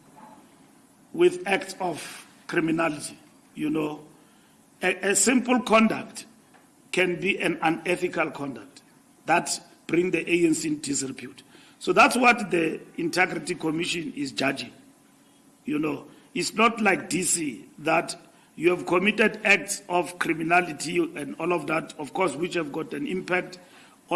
with acts of criminality. You know, a simple conduct can be an unethical conduct that bring the ANC in disrepute. So that's what the Integrity Commission is judging. It's not like DC that you have committed acts of criminality and all of that, of course, which have got an impact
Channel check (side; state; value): both; identical; correlation 1.00